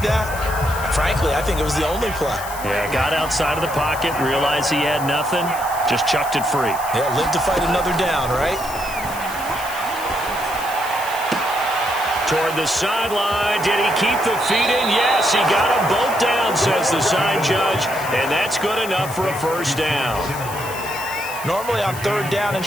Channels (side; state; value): left; noise; hiss, 13 dB below the sound